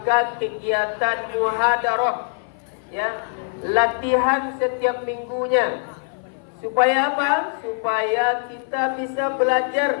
kegiatan muhadarah, ya, latihan setiap minggunya. Supaya apa? Supaya kita bisa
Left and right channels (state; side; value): silent; right; 57 dB below the other